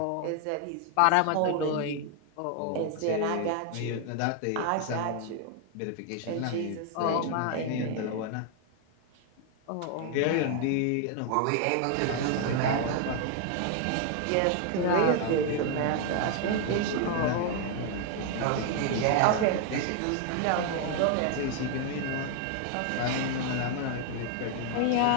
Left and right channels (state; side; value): different; both; correlation 0.00